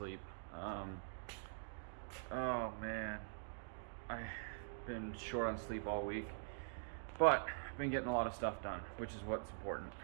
Oh man, I've been short on sleep all week, but I've been getting a lot of stuff done, which is what's important.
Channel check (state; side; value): silent; left; digital silence